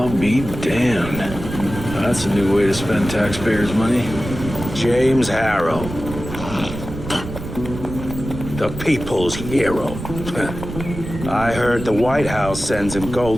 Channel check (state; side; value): noise; right; rumble, 9 dB below the sound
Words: be damned. That's a new way to spend taxpayers' money. James Harrow. The people's hero. I heard the White House sends him